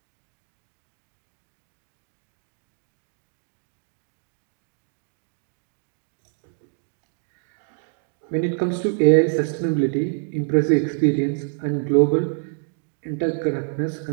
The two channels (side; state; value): left; silent; digital silence